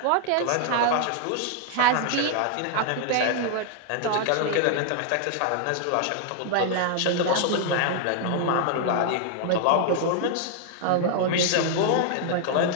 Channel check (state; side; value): different; both; correlation 0.00